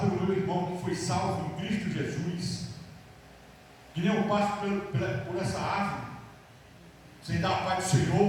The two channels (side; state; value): both; identical; correlation 1.00